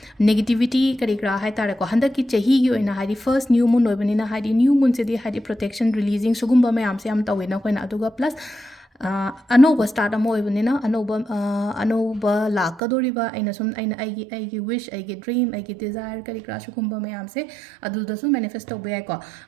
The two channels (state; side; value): drops out; left; at 12.8 s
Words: ꯅꯦꯒꯦꯇꯤviटी ꯀꯔꯤ ꯀꯔꯥ ꯍꯥꯏꯇꯥꯔꯦꯀꯣ ꯍꯟꯗꯛꯀꯤ ꯆꯍꯤꯒꯤ ꯑꯣꯏꯅ ꯍꯥꯏꯗꯤ ꯐꯔꯁ ꯅ꯭ꯌꯨ ꯃꯨꯟ ꯑꯣꯏꯕꯅꯤ나 ꯍꯥꯏꯗꯤ ꯅ꯭ꯌू ꯃꯨꯟꯁꯤꯗꯤ ꯍꯥꯏꯗꯤ ꯄ꯭ꯔꯣꯇꯦꯛꯁꯟ ꯔꯤꯂꯤꯖꯤꯡ ꯁꯨꯒꯨꯝꯕ ꯃꯌꯥꯝꯁꯦ ꯌꯥꯝ ꯇꯧꯋꯦꯅ ꯑꯩꯈꯣꯏꯅ ꯑꯗꯨꯒ ꯄ꯭ꯂꯁ ꯑꯅꯧꯕ ꯁ꯭ꯇꯥꯔꯠ ꯑꯃ ꯑꯣꯏꯕꯅꯤꯅ ꯑꯅꯧꯕ ꯂꯥꯛꯀꯗꯣꯔꯤꯕ ꯑꯩꯒꯤ ꯋꯤꯁ ꯑꯩꯒꯤ ꯗ꯭ꯔꯤꯝ ꯑꯩꯒꯤ ꯗꯤꯖꯥꯌꯔ ꯀꯔꯤ ꯀꯔꯥ ꯁꯨꯒꯨꯝꯕ ꯃꯌꯥꯝꯁꯦ ꯑꯗꯨꯗꯁꯨ ꯃꯦꯅꯤꯐꯦꯁ ꯇꯧꯕ ꯌꯥꯏꯀꯣ